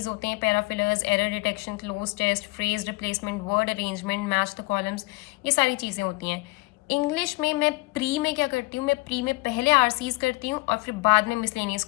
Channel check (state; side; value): quieter; right; 23.7 dB